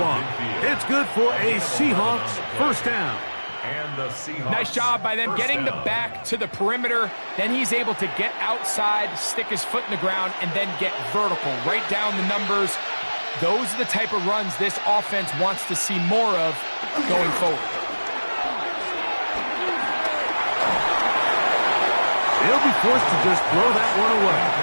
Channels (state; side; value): inverted; both; correlation -1.00